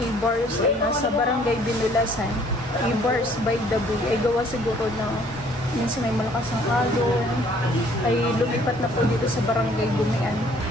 ay nasa Barangay Binulasan. E-Bars by the Bay ay gawa siguro ng minsan may malakas ang alon ay lumipat na po dito sa Barangay Bumian.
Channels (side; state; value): both; normal; correlation 0.59